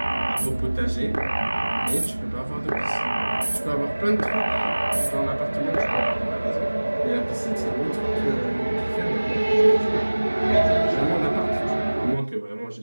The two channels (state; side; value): inverted; both; correlation -1.00